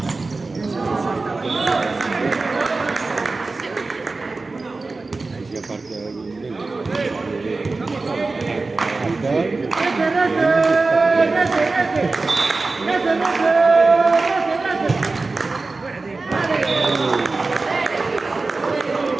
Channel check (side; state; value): left; quieter; 3.7 dB